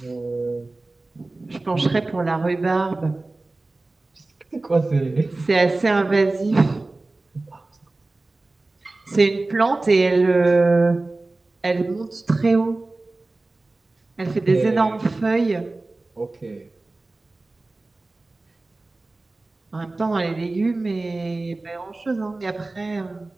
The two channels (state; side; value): quieter; left; 3.1 dB